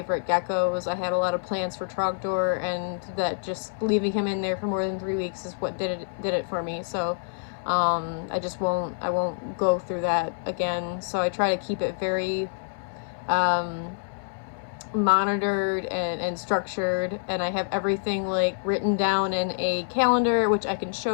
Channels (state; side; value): silent; right; 60 dB below the other